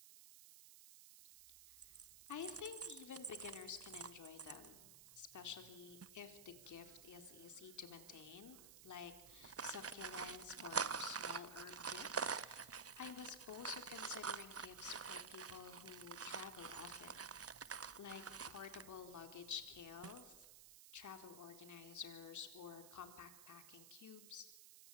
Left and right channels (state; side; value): noise; right; hiss, 13 dB below the sound